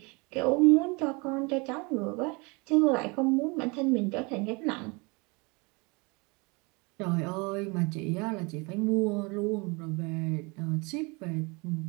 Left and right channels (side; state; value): left; quieter; 28.5 dB